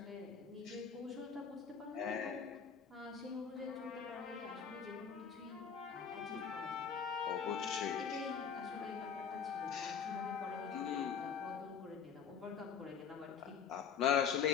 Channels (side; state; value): right; quieter; 6.9 dB